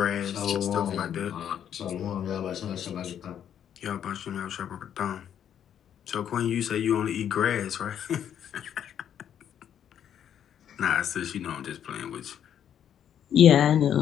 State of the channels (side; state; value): right; quieter; 9.4 dB